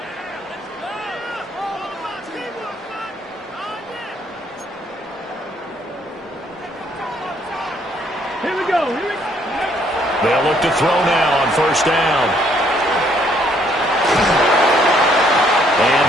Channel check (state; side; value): normal; both; correlation 0.67